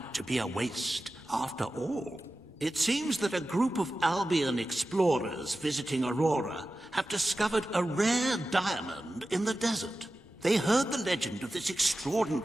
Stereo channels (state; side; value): normal; both; correlation 0.94